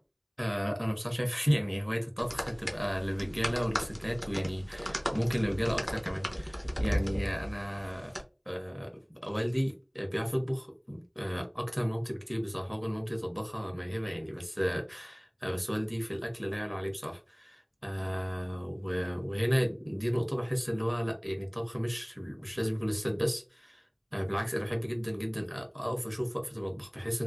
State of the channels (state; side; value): identical; both; correlation 1.00